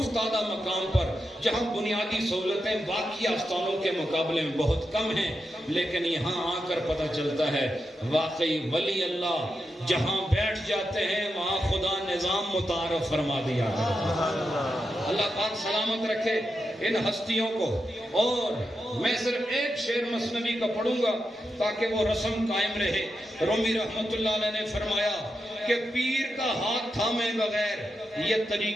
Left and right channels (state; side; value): normal; both; correlation 0.87